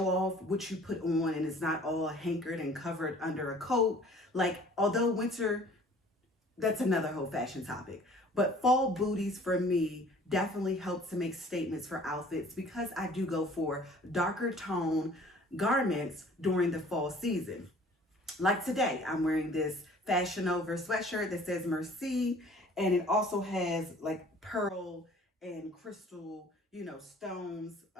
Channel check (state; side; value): normal; both; correlation 0.51